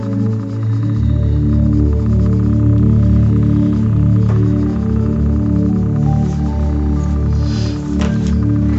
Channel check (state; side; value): identical; both; correlation 1.00